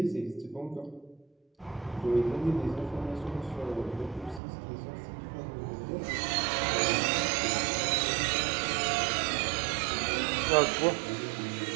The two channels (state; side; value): drops out; left; at 4.4 s